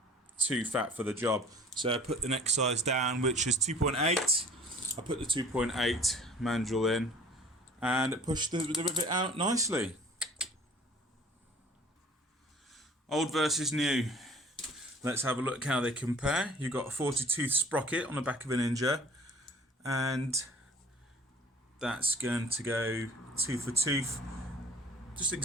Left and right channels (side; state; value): both; normal; correlation 0.48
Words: too fat for the job. So I put the next size down, which is 2.8. I put the 2.8 mandrel in and it pushed the rivet out nicely. Old versus new. Let's have a look how they compare. You've got a 40-tooth sprocket on the back of a Ninja, and that's going to go tooth for tooth. Just